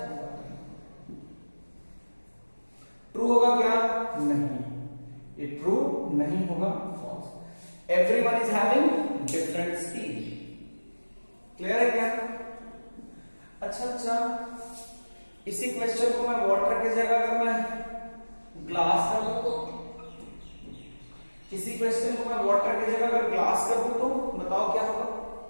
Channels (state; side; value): inverted; both; correlation -1.00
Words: ट्रू होगा क्या? नहीं, ये ट्रू नहीं होगा, false. Everyone is having different speed. Clear है क्या? अच्छा, इसी क्वेश्चन को मैं वाटर की जगह अगर मैं ग्लास कर दूं तो, इसी क्वेश्चन को मैं वाटर की जगह अगर ग्लास कर दूं तो बताओ क्या होगा?